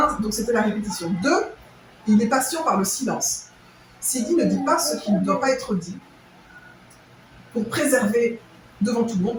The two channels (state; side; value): identical; both; correlation 1.00